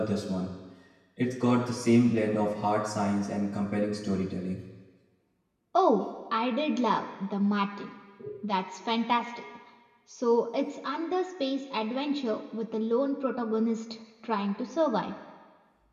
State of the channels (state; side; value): identical; both; correlation 1.00